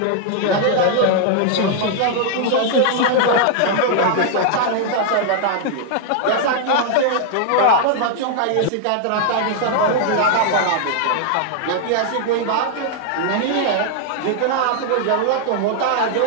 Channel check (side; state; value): both; different; correlation 0.00